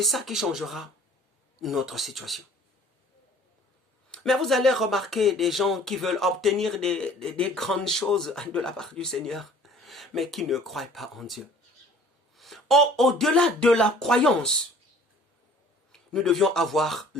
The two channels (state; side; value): normal; both; correlation 0.51